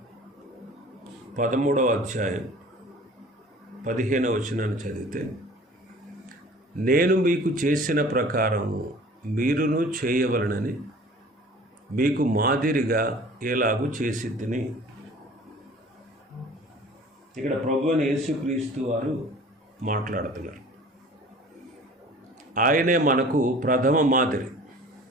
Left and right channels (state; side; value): normal; both; correlation 0.46